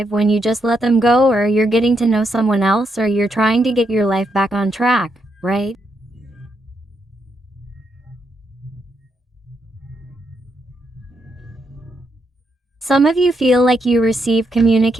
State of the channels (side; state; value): both; normal; correlation 0.80